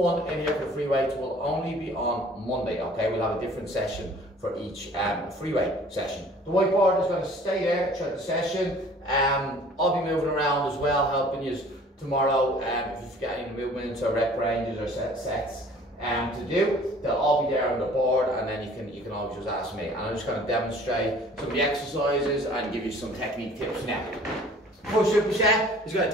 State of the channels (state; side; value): normal; both; correlation 0.51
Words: in here for free weights will only be on Monday, okay? We'll have a different session for each free weight session. The whiteboard is going to stay there throughout the session. I'll be moving around as well, helping you tomorrow if you've got any movements or rep ranges or sets to do. They'll all be there on the board, and then you can always just ask me. And I'm just going to demonstrate some of the exercises and give you some technique tips now. First superset is going